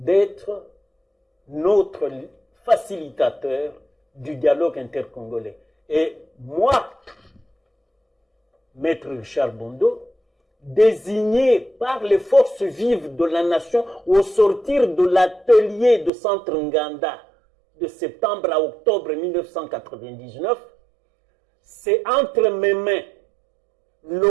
notre facilitateur du dialogue intercongolais. Et moi, Maître Richard Bondo, désigné par les forces vives de la nation au sortir de l'atelier de Centre Nganda de septembre à octobre 1999, c'est entre mes mains,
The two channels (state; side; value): drops out; left; at 16.1 s